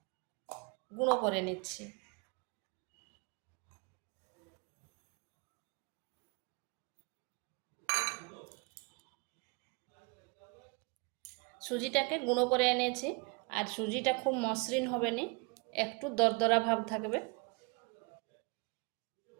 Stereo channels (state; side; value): quieter; left; 31.0 dB